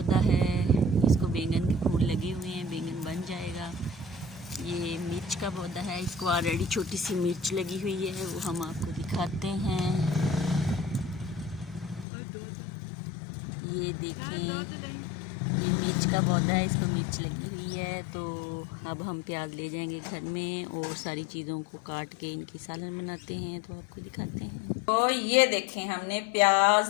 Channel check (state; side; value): drops out; right; at 12.1 s